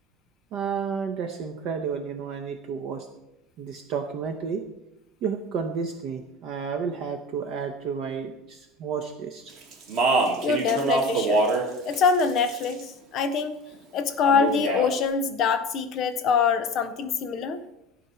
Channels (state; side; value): normal; both; correlation 0.34